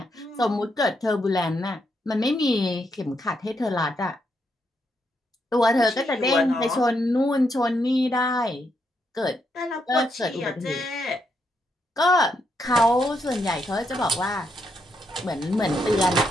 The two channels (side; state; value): both; normal; correlation 0.79